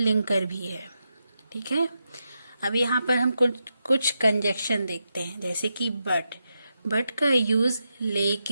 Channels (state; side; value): inverted; both; correlation -0.86